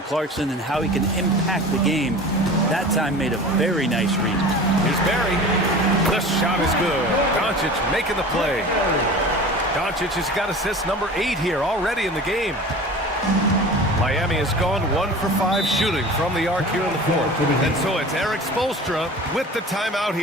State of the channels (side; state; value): both; normal; correlation 0.38